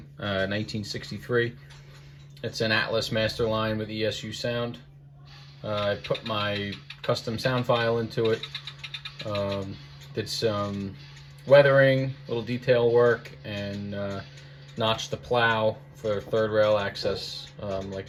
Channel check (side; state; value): both; identical; correlation 1.00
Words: 1963. It's an Atlas master line with ESU sound. I put my custom sound file into it, did some weathering, little detail work, and notched the plow for third rail access